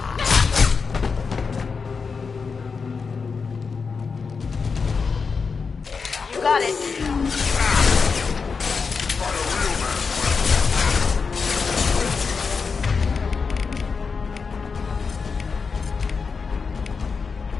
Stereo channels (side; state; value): right; quieter; 5.2 dB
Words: You got it.